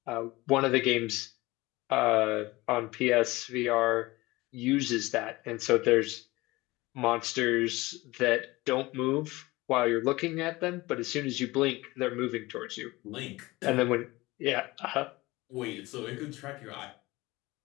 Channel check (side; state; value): right; quieter; 20.7 dB